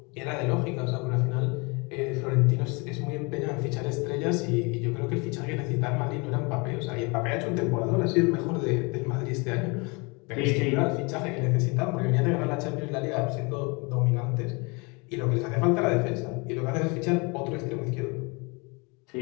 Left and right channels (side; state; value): right; quieter; 29.4 dB